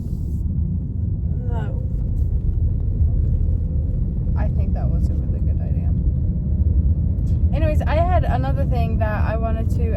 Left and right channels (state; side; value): identical; both; correlation 1.00